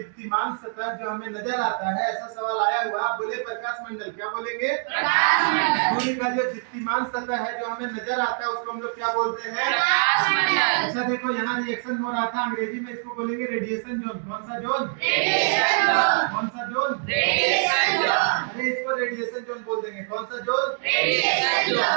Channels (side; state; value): left; silent; digital silence